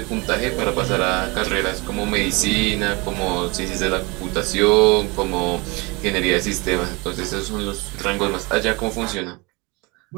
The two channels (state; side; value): quieter; left; 26.7 dB